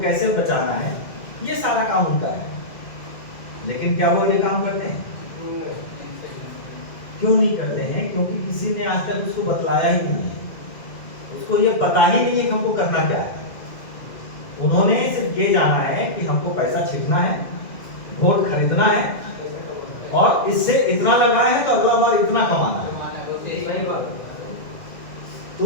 कैसे बचाना है, ये सारा काम उनका है। लेकिन क्या वो ये काम करते हैं? क्यों नहीं करते हैं? क्योंकि किसी ने आज तक उसको बतलाया ही नहीं है, उसको ये पता ही नहीं है कि हमको करना क्या है। उन्होंने सिर्फ ये जाना है कि हमको पैसा छिड़कना है, वोट खरीदना है, और इससे इतना लगाए हैं तो अगला बार इतना कमाना है।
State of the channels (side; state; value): right; late; 2.0 ms